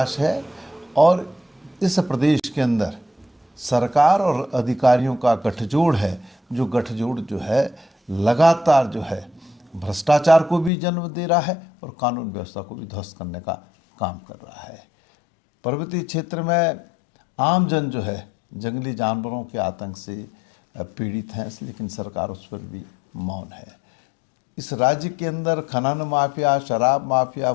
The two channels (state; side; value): drops out; right; at 10.7 s